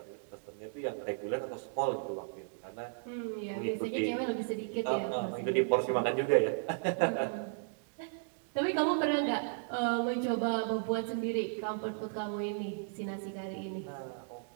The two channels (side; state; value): left; silent; digital silence